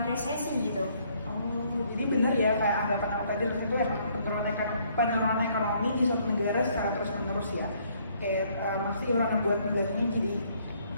resesi gitu. Oh, jadi benar ya kayak anggapan aku tadi itu emang penurunan ekonomi di suatu negara secara terus-menerus ya. Kayak masih orang buat negaranya jadi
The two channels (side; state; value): both; inverted; correlation -0.66